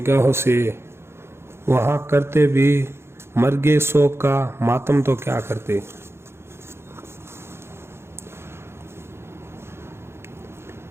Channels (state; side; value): late; left; 0.12 ms